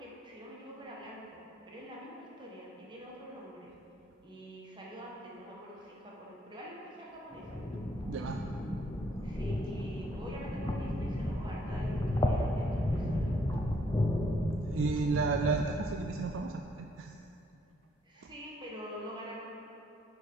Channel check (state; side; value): normal; both; correlation 0.70